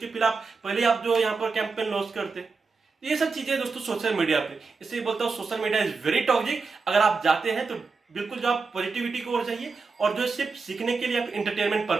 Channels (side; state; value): left; quieter; 4.5 dB